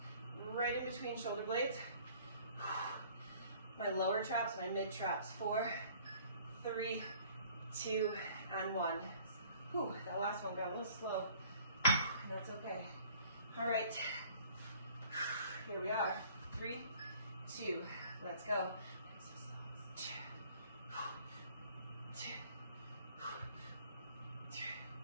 right in between shoulder blades. My lower traps, my mid traps. 4, 3, 2, and 1. Whew, that last one got a little slow. That's okay. All right, here we are. 3, 2, let's go. 5,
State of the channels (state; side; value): inverted; both; correlation -0.54